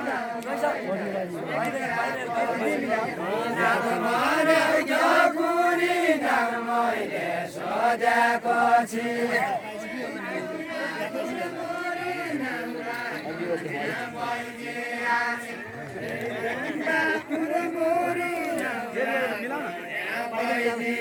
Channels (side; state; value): both; identical; correlation 1.00